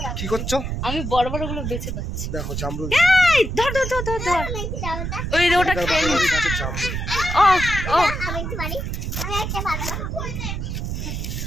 কি করছো? আমি বড় বড় গুলো বেছে পাচ্ছি। দেখো জামরুল, এই ধর ধর ধর ধর ধর। ওই যে ওটা খেয়ে নি। গাছের জামরুল। ও ও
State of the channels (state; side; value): noise; right; rumble, 3 dB below the sound